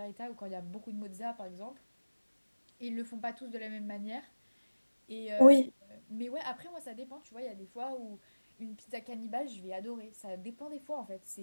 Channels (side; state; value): both; inverted; correlation -1.00